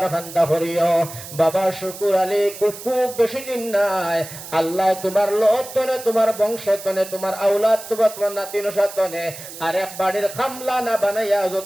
খান্তা করিও। বাবা শুকুর আলী খুব বেশি দিন নাই, আল্লাহ তোমার লোতনে তোমার বংশতনে তোমার আউলাদ তোমার নাতি নসাতনে আর এক বাড়ির খামলা না বানাইয়া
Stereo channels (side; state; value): right; noise; hiss, 13 dB below the sound